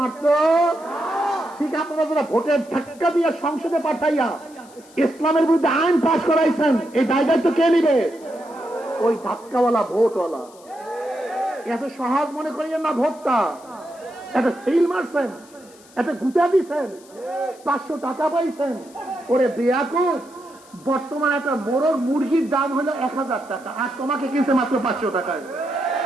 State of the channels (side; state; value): left; noise; hiss, 25 dB below the sound